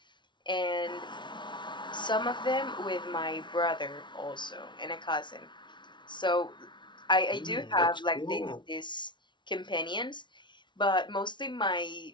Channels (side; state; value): right; late; 0.23 ms